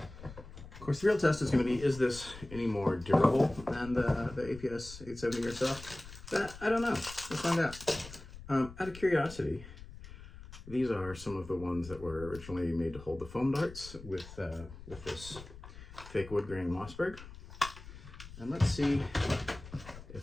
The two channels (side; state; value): left; noise; rumble, 15 dB below the sound